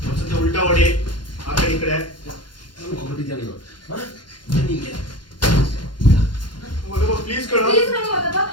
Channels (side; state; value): right; late; 0.71 ms